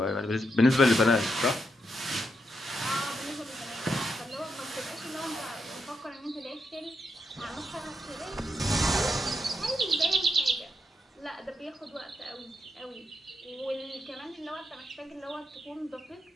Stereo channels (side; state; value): both; normal; correlation 0.82